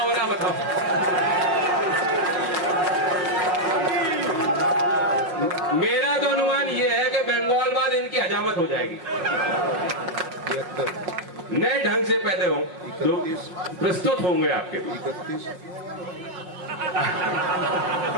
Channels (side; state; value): left; late; 5.5 ms